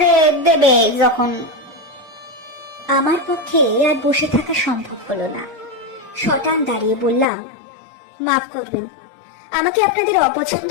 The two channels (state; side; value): drops out; right; at 7.2 s